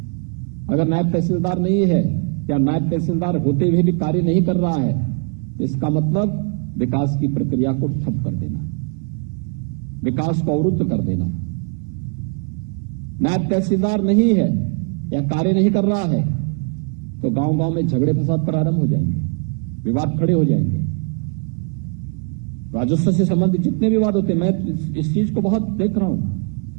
अगर नायब तहसीलदार नहीं है या नायब तहसीलदार होते हुए भी कार्य नहीं कर रहा है तो इसका मतलब विकास की प्रक्रिया को ठप कर देना, विकास को अवरुद्ध कर देना। नायब तहसीलदार नहीं है या कार्य नहीं कर रहा है तो गांव-गांव में झगड़े फसाद प्रारंभ हो जाएंगे, विवाद खड़े हो जाएंगे। राजस्व से संबंधित जितने विवाद होते हैं, मैं इस चीज को बहुत देख रहा हूं,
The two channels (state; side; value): quieter; left; 38.9 dB